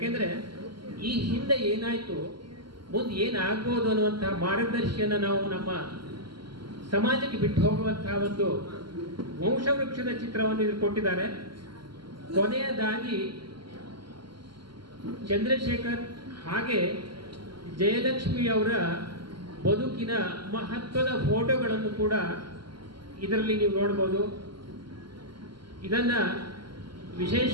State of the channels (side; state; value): left; late; 0.72 ms